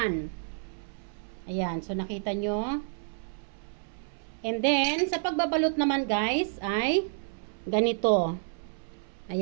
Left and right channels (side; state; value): left; silent; 58 dB below the other